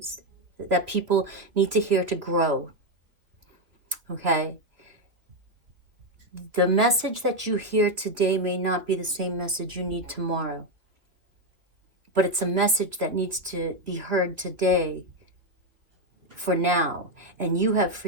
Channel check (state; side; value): late; left; 3.0 ms